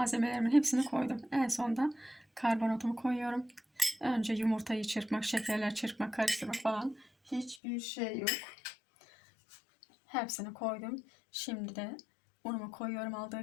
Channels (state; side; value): drops out; right; at 7.6 s